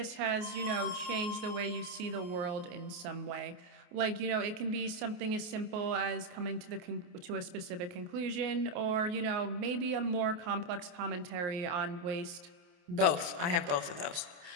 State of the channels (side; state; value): left; late; 28 ms